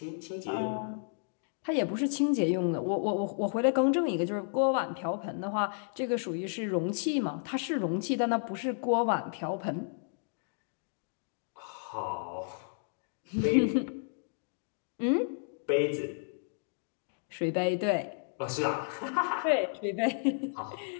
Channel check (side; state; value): right; silent; digital silence